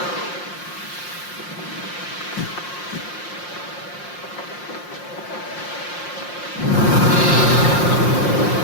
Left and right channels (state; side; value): late; right; 5.7 ms